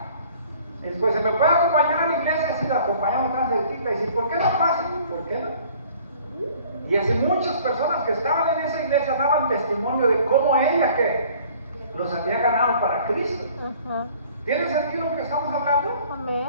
Después, ¿se me puede acompañar a la iglesia? Sí, la acompañamos tan cerquita. Y dice, ¿por qué no pasa? ¿Por qué no? Y así muchas personas que estaban en esa iglesia daban testimonio de cómo ella que los había ganado para Cristo. ¿Tiene sentido lo que estamos hablando?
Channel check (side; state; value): both; inverted; correlation -0.53